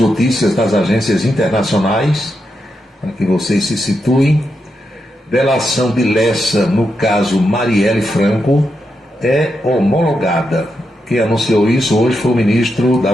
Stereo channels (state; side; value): normal; both; correlation 0.85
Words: das agências internacionais, para que vocês se situem. Delação de Lessa no caso Marielle Franco é homologada. Quem anunciou isso hoje foi o ministro da